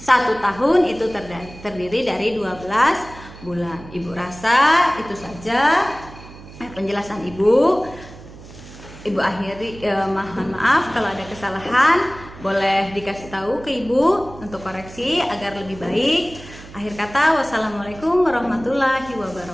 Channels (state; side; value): noise; right; hum, 18 dB below the sound